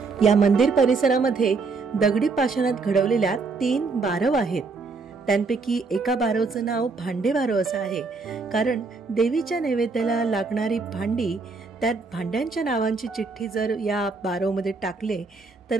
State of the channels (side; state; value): left; quieter; 4.2 dB